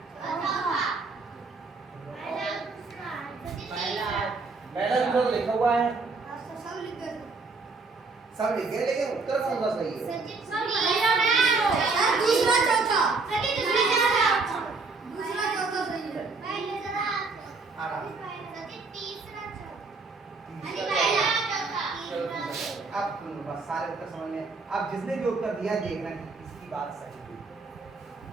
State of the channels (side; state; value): left; quieter; 4.0 dB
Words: चौथा पहला दूसरा सजी तीसरा पहला दूसरा तो लिखा हुआ है, सब लिख दो सब लिख गए, लेकिन उत्तर कौन सा सही है? सजी सर दूसरा चौथा सजी दूसरा चौथा दूसरा चौथा सही है पहले जरा आराम। सजी तीसरा चौथा सजी तीसरा पहला चौथा। चौथा तीसरा अब बस सारे उत्तर समझ में। अब जिसने भी उत्तर दिया देखना कि इसकी बात सही है।